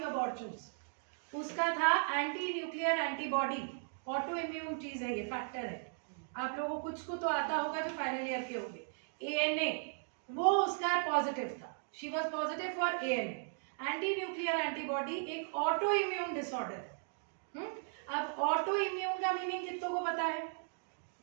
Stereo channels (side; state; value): left; silent; digital silence